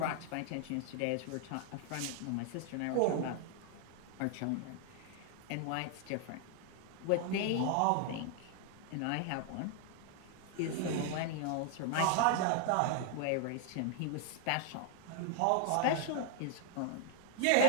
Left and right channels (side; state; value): both; different; correlation 0.00